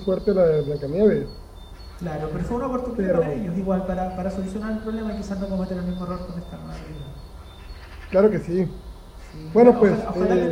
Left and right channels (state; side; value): identical; both; correlation 1.00